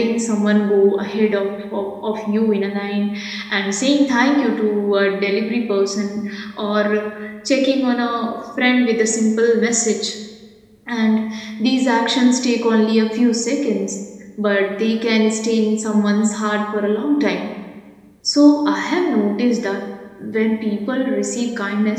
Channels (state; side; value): identical; both; correlation 1.00